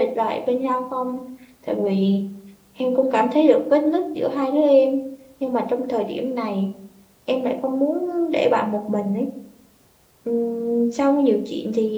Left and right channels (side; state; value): both; identical; correlation 1.00